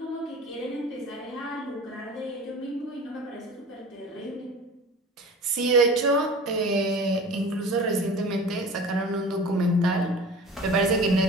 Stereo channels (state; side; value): normal; both; correlation 0.39